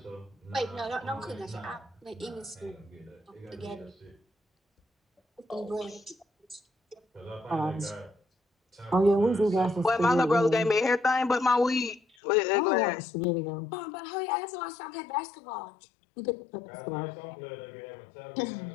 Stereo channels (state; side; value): drops out; right; at 12.0 s